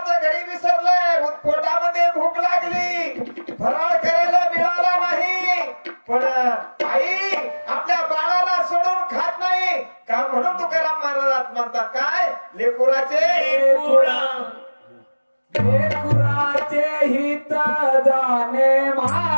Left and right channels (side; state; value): both; inverted; correlation -1.00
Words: घरी विसरलंय, पोटामध्ये भूक लागली, फराळ करायला मिळाला नाही, पण आई आपल्या बाळाला सोडून खात नाही का? म्हणून तुकाराम महाराज म्हणतात, काय? लेकुराचे हित जाणे